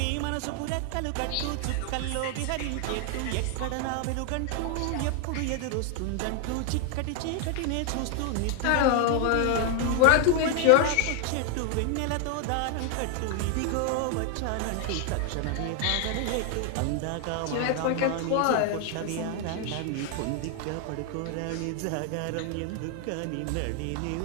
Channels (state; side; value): different; both; correlation 0.00